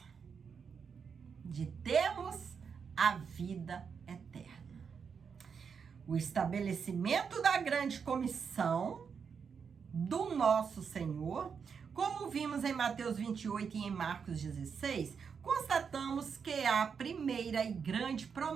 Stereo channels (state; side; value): quieter; left; 6.3 dB